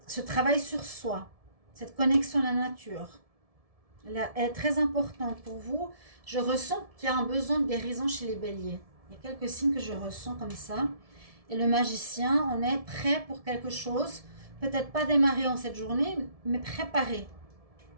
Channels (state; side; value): late; left; 1.7 ms